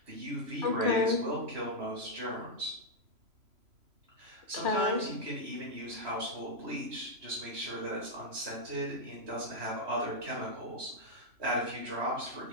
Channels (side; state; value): left; late; 3.0 ms